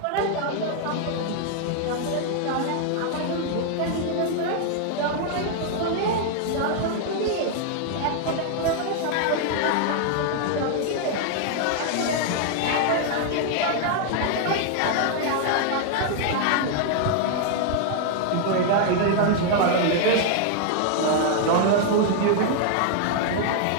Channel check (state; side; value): different; both; correlation 0.00